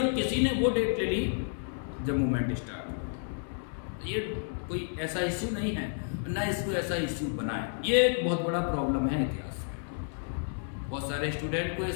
किसी ने वो डेट ले ली जब मूवमेंट स्टार्ट हुई। तो ये कोई ऐसा इश्यू नहीं है, ना इसको ऐसा इश्यू बनाए। ये एक बहुत बड़ा प्रॉब्लम है इतिहास में। बहुत सारे स्टूडेंट को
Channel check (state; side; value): silent; right; 57 dB below the other